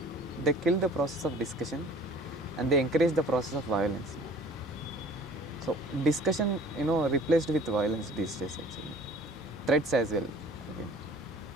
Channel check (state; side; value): normal; both; correlation 0.49